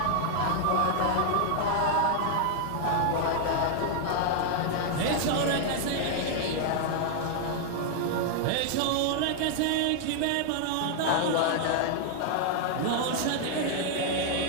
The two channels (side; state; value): both; different; correlation 0.00